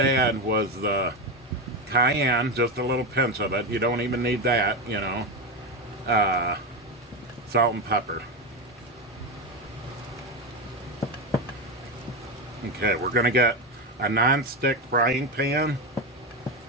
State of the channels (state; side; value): normal; both; correlation 0.14